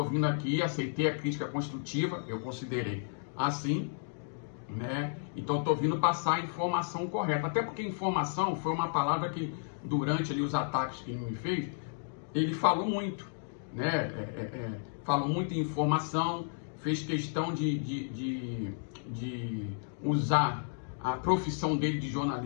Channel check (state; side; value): silent; right; digital silence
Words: vindo aqui, aceitei a crítica construtiva, eu considerei assim, né? Então estou vindo passar a informação correta, até porque informação foi uma palavra que durante ali os ataques que ele me fez, ele falou muito, né? Falou muito em informação, fez questão de usar a profissão dele de